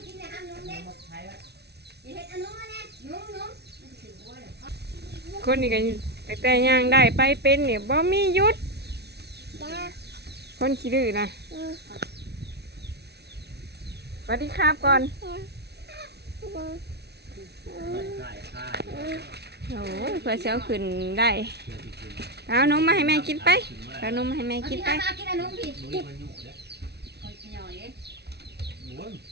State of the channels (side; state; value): left; late; 0.49 ms